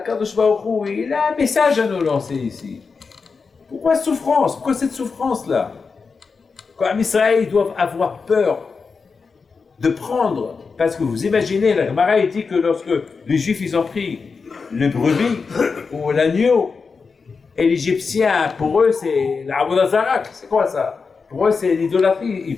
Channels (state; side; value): quieter; right; 4.9 dB